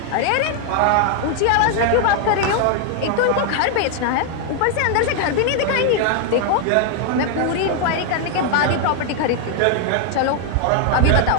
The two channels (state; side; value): different; both; correlation 0.00